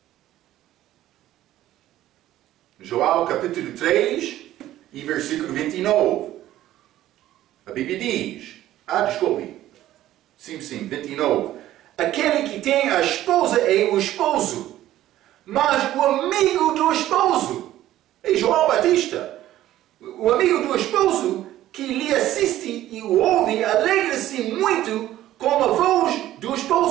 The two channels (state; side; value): quieter; left; 13.8 dB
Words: João capítulo 3 e versículo 29. A Bíblia diz, desculpe. Sim, 29. Aquele que tem a esposa é o esposo, mas o amigo do esposo é João Batista. O amigo do esposo que lhe assiste e o ouve alegra-se muito com a voz do